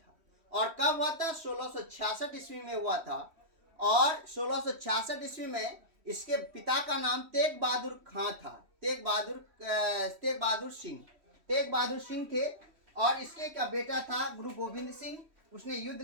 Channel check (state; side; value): late; left; 3.1 ms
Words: और कब हुआ था? 1666 ईस्वी में हुआ था। और 1666 ईस्वी में इसके पिता का नाम तेग बहादुर खां था, तेग बहादुर सिंह थे। और इसके का बेटा था गुरु गोविंद सिंह। उसने युद्ध